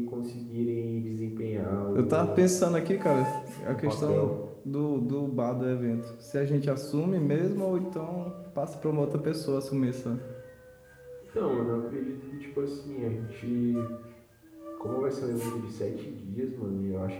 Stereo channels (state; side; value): identical; both; correlation 1.00